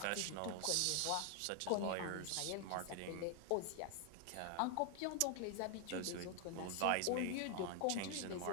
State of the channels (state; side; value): different; both; correlation 0.00